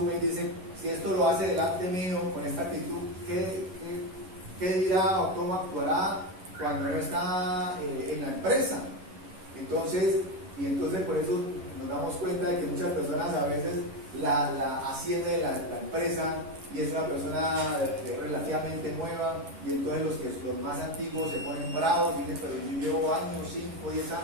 y dice, si esto lo hace delante mío con esta actitud, ¿qué dirá o cómo actuará cuando no está en la empresa? Entonces por eso nos damos cuenta de que muchas personas a veces la asciende de la empresa y es una persona relativamente nueva, y entonces los más antiguos se ponen bravos y dicen, pero yo llevo años, 5, 10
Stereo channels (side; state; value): left; late; 11 ms